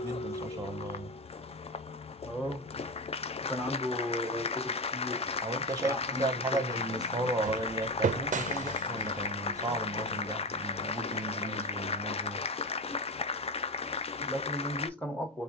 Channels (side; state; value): both; normal; correlation 0.19